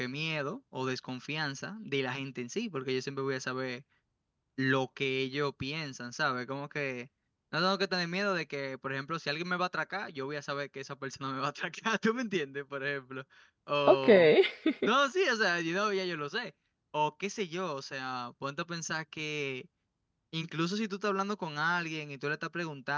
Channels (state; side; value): identical; both; correlation 1.00